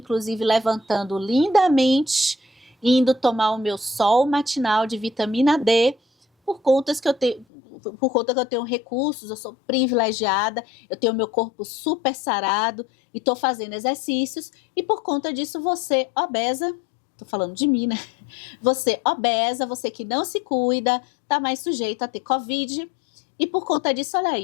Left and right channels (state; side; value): drops out; right; at 7.5 s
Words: levantando lindamente, indo tomar o meu sol matinal de vitamina D, por conta que eu tenho recursos, eu sou privilegiada, eu tenho meu corpo super sarado e estou fazendo exercícios, e por conta disso você, obesa, estou falando de mim, né? Você obesa, você que não se cuida, tá mais sujeito a ter Covid, e por conta disso, olha